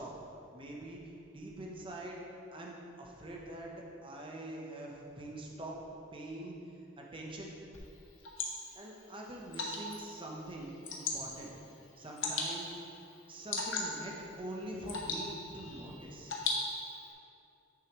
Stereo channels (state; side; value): normal; both; correlation 0.17